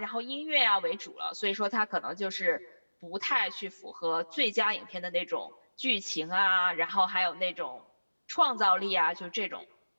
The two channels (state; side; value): inverted; both; correlation -1.00